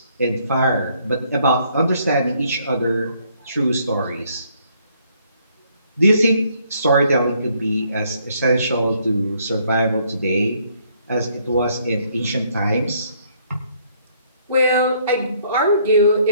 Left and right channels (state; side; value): inverted; both; correlation -0.67